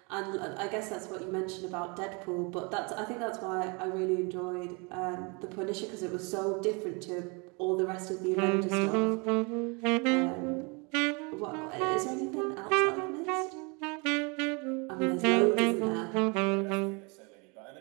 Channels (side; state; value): left; quieter; 30.9 dB